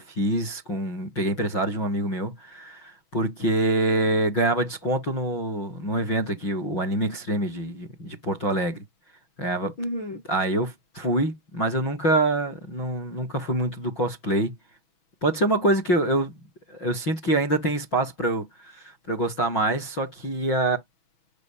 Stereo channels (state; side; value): late; right; 6.2 ms